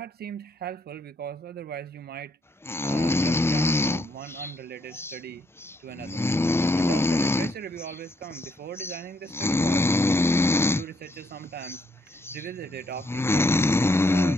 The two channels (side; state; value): both; normal; correlation 0.72